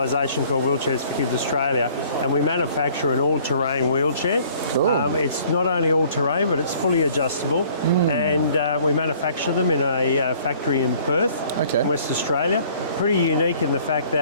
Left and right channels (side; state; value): both; inverted; correlation -0.56